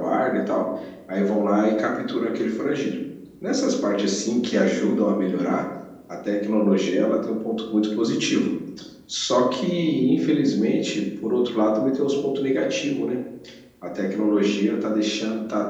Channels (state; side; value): identical; both; correlation 1.00